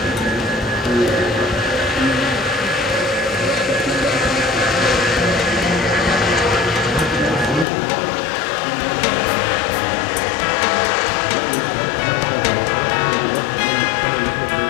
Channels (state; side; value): drops out; right; at 7.7 s